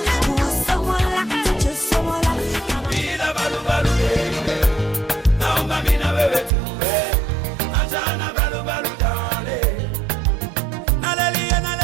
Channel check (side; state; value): left; drops out; at 6.5 s